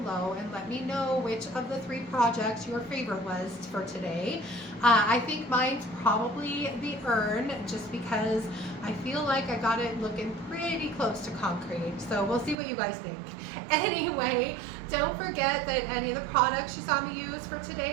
and let me know which of the 3 projects your favorite was for today. I think mine's probably the urn, just because I feel like I got it looking pretty close to concrete. So we'll see what you guys think. Anyway, don't forget that any of the products you saw me use for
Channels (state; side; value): drops out; left; at 12.6 s